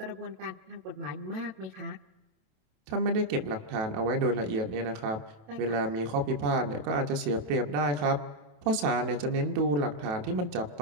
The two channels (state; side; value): late; left; 28 ms